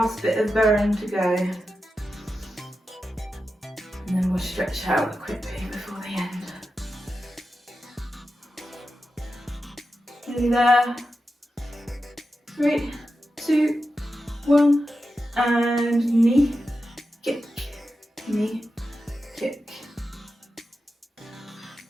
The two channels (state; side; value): normal; both; correlation 0.91